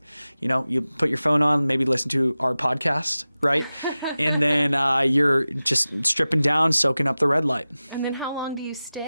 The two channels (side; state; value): both; inverted; correlation -0.96